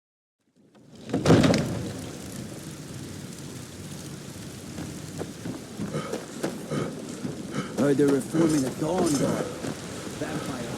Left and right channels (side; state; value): both; identical; correlation 1.00